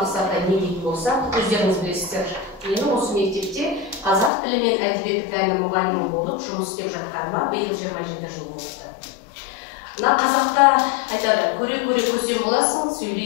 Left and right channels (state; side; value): drops out; right; at 4.3 s